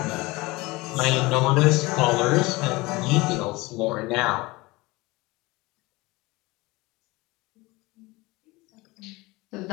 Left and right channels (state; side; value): quieter; right; 22.3 dB